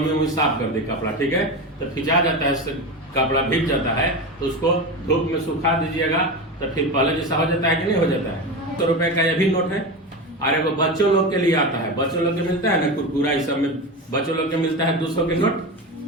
साफ कर दे कपड़ा, ठीक है? तो खिंचा जाता है, कपड़ा भीग जाता है, तो उसको धूप में सुखा दीजिएगा, तो फिर पहले जैसा हो जाता है कि नहीं हो जाता है? 100 रुपए का यह भी नोट है। और एगो बच्चों लोग के लिए आता है, बच्चों लोग के मिलता है ना कुरकुरा, इस सब में बच्चों लोग के मिलता है 200 के नोट,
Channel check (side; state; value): both; normal; correlation 0.22